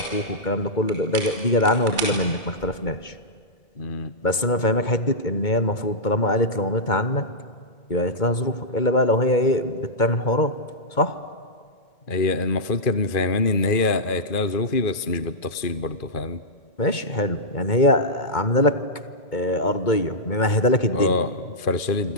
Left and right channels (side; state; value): right; late; 2.2 ms